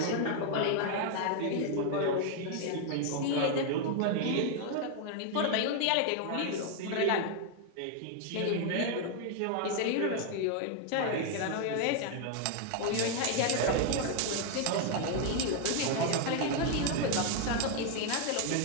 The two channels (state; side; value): different; both; correlation 0.00